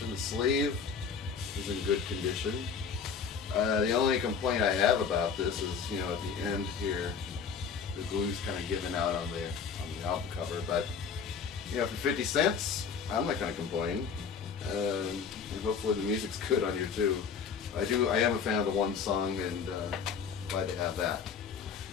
The sleeve is in good condition. The only complaint I have about this is, you know, at the end here, the glue's kind of giving out on the album cover. But, you know, for 50 cents, I'm not going to complain. And hopefully the music's good on here too. I am a fan of the one song, and glad to have that.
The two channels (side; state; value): right; quieter; 6.4 dB